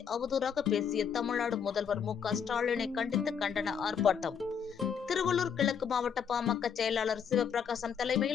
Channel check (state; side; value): quieter; right; 7.3 dB